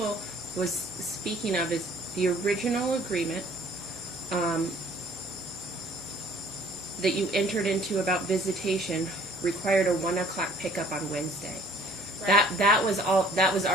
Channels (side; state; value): both; normal; correlation 0.56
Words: was speaking of is the original agreement that you entered into about visitation required a 1 o'clock pickup on Wednesday. Right. That was